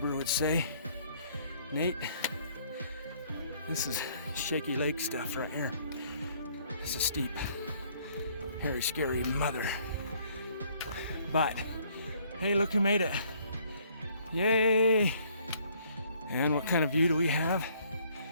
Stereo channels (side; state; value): both; inverted; correlation -0.63